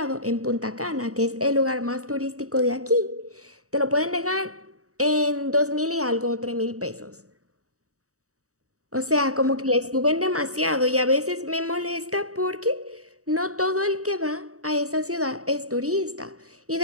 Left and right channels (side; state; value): left; late; 0.65 ms